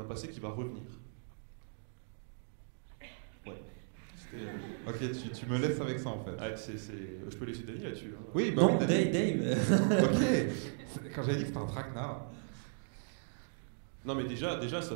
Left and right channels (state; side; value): silent; left; digital silence